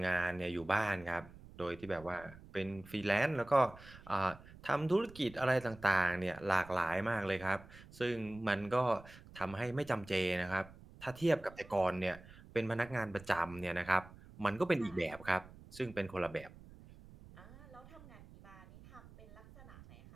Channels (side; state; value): right; noise; rumble, 19 dB below the sound